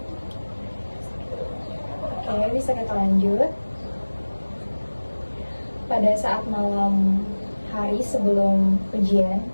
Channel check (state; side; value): inverted; both; correlation -1.00